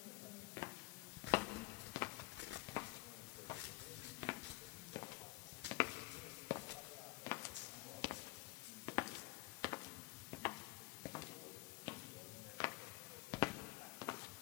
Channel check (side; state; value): right; quieter; 22.4 dB